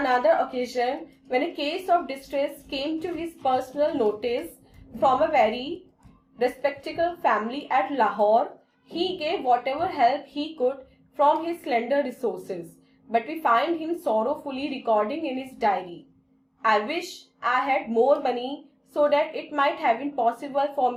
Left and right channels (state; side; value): identical; both; correlation 1.00